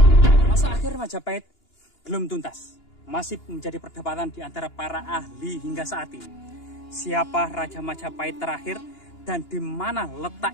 Majapahit belum tuntas, masih menjadi perdebatan di antara para ahli hingga saat ini. Siapa Raja Majapahit terakhir dan di mana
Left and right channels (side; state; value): right; late; 2.9 ms